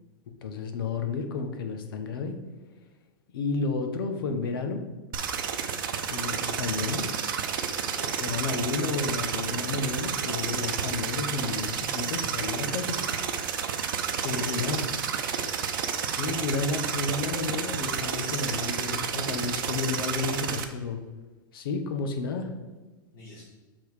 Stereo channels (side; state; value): both; normal; correlation -0.05